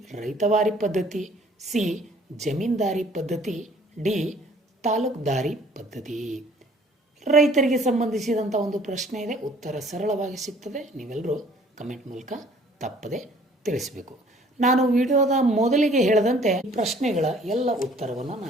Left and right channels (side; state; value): both; normal; correlation 0.56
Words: ರೈತವಾರಿ ಪದ್ಧತಿ, ಸಿ ಜಮೀನ್ದಾರಿ ಪದ್ಧತಿ, ಡಿ ತಾಲೂಕ್ದಾರಿ ಪದ್ಧತಿ. ರೈತರಿಗೆ ಸಂಬಂಧಿಸಿದಂಥ ಒಂದು ಪ್ರಶ್ನೆ ಇದೆ, ಉತ್ತರ ಸರಳವಾಗಿ ಸಿಗ್ತದೆ. ನೀವೆಲ್ಲರೂ ಕಮೆಂಟ್ ಮೂಲಕ ತಪ್ಪದೆ ತಿಳಿಸಬೇಕು. ನಾನು ವಿಡಿಯೋದ ಮೊದಲಿಗೆ ಹೇಳಿದಂತೆ ಪ್ರಶ್ನೆಗಳ ಎಲ್ಲ ಉತ್ತರವನ್ನು